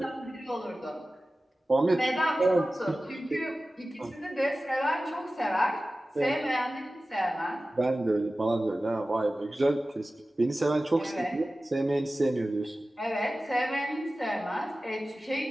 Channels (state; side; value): normal; both; correlation 0.96